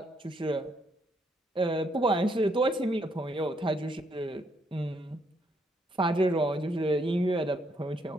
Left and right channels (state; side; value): normal; both; correlation 0.73